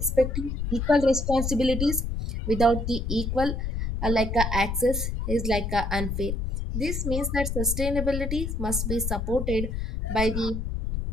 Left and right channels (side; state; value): left; noise; rumble, 2 dB below the sound